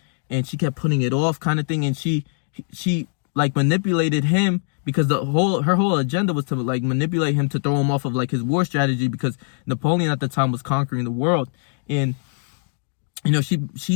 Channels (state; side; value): silent; right; digital silence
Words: and she kept putting it off kind of thing. And she like manipulated him, because her whole agenda was to like manipulate him to throw him off of like his war strategy, because Napoleon at the time was conquering the world. And, you know,